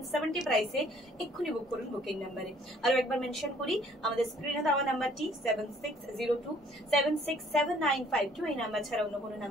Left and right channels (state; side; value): normal; both; correlation 0.59